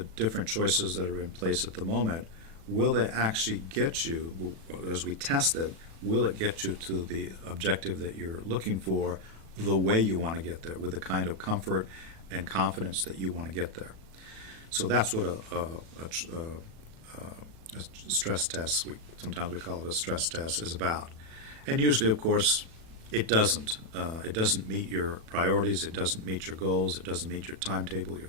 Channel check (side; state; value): left; late; 36 ms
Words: different choices that are in place at the moment, will they actually get you, as we test it, will it get you to the objective that you're looking for the way you want to get there, with the kind of comfort and confidence that you want to get there? So that's what a stress test, sometimes we call it a stress test, is about. And usually, of course, it doesn't. It doesn't meet your priorities. It doesn't meet your goals. It doesn't meet your timetable, your